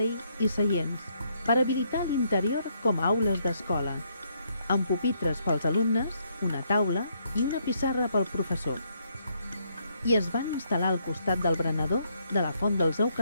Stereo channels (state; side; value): inverted; both; correlation -0.73